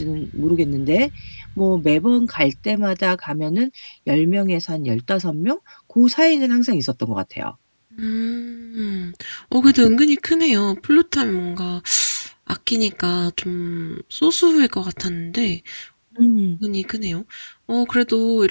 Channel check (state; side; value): inverted; both; correlation -1.00